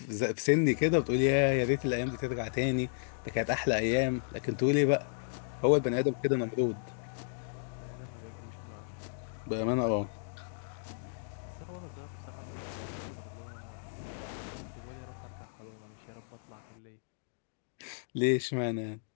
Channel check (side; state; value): right; silent; digital silence